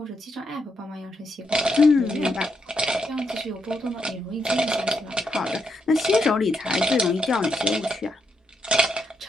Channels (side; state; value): both; normal; correlation 0.80